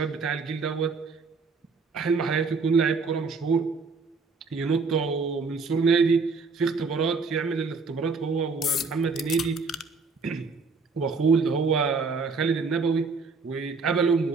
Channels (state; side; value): quieter; left; 4.5 dB